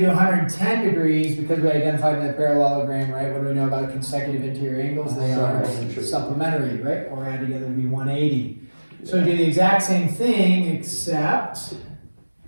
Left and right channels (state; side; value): inverted; both; correlation -1.00